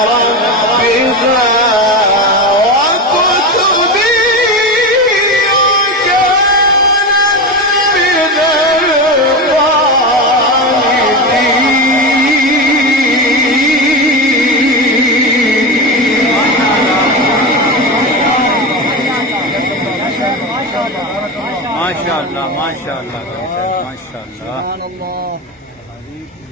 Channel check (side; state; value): both; normal; correlation 0.20